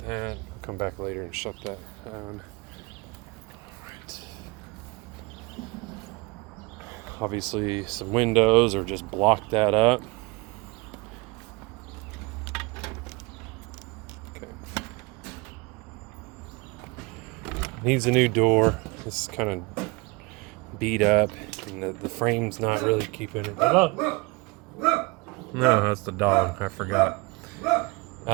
that. Come back later and shut that down. Alright. Obviously some windows or just block that up. Okay. Needs a new door. This is kind of beat up, and the frame's not really keeping it. No, that's the dog. I forgot.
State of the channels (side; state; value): left; quieter; 25.8 dB